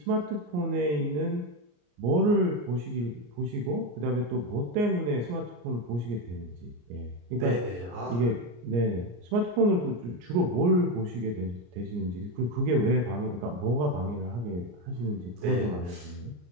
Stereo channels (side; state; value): left; late; 34 ms